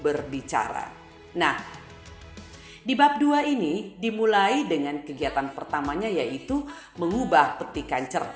Nah, di bab 2 ini dimulai dengan kegiatan pertamanya yaitu mengubah petikan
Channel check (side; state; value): both; identical; correlation 1.00